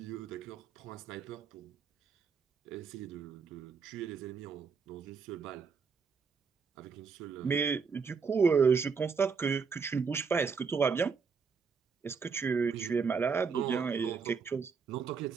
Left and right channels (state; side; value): quieter; left; 5.5 dB